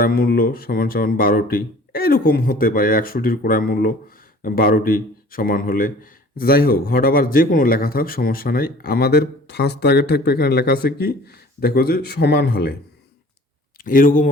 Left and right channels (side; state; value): both; normal; correlation 0.48